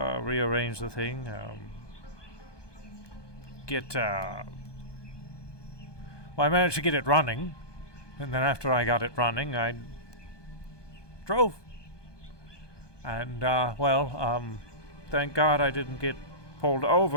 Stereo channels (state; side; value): late; right; 1.2 ms